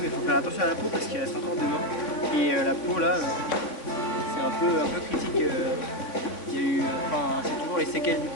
mais il faut faire attention à la peau parce qu'il reste encore demain. Et la peau là, c'est un peu critique. Il y a eu, c'est toujours les séquelles du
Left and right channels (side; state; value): right; late; 3.5 ms